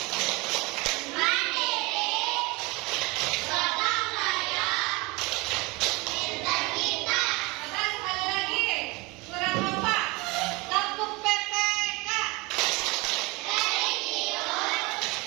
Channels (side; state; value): left; quieter; 25.1 dB